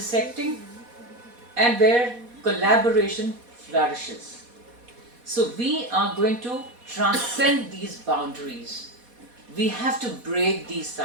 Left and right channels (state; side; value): late; left; 4.1 ms